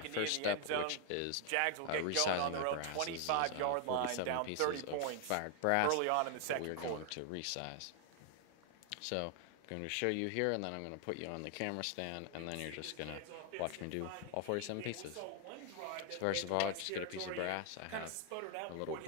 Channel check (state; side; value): different; both; correlation 0.00